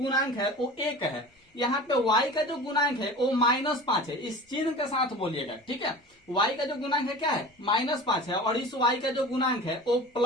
है वो 1 है। यहाँ पे y का जो गुणांक है वो -5 है, इस चिन्ह के साथ बोलिएगा, ठीक है। y का जो गुणांक है क्या है, -5 है, और इस y का जो गुणांक है वो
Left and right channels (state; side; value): normal; both; correlation 0.36